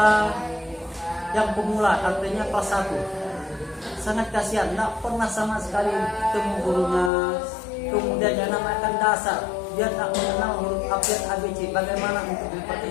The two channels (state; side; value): drops out; right; at 7.1 s